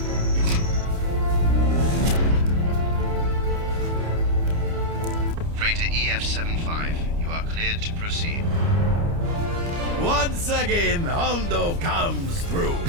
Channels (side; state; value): left; late; 29 ms